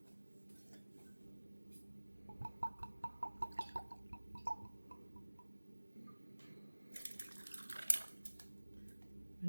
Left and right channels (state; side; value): inverted; both; correlation -1.00